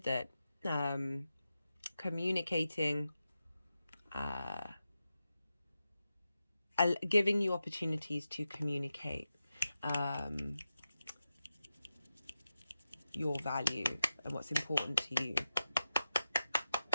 communicating, giving you opportunities to communicate your value and what's important to you.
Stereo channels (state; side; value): inverted; both; correlation -0.91